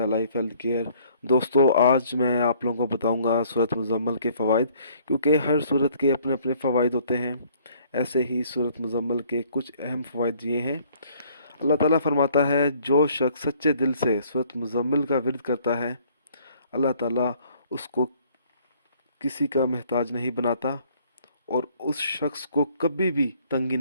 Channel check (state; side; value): inverted; both; correlation -0.60